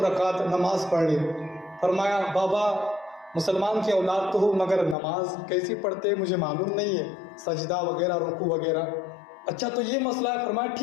رکعت نماز پڑھ لے۔ فرمایا بابا مسلمان کی اولاد تو ہوں، مگر نماز کیسی پڑھتے ہیں مجھے معلوم نہیں ہے، سجدہ وغیرہ رکوع وغیرہ۔ اچھا تو یہ مسئلہ ہے۔ فرمایا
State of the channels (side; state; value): right; drops out; at 5.0 s